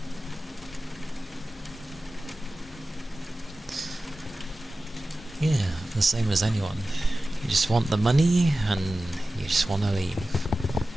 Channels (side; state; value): both; normal; correlation 0.95